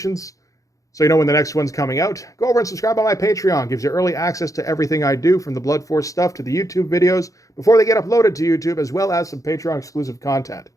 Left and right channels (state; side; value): late; right; 0.16 ms